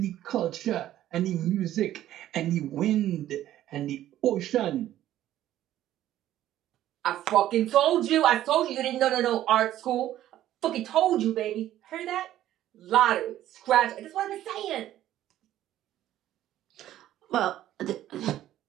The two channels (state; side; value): quieter; left; 13.0 dB